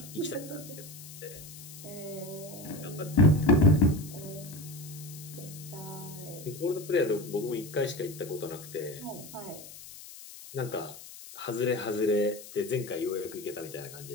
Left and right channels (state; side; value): noise; left; hiss, 15 dB below the sound